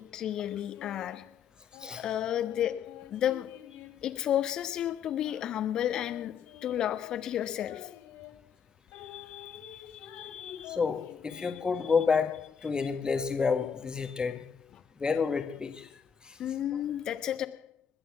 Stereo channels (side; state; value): right; quieter; 7.3 dB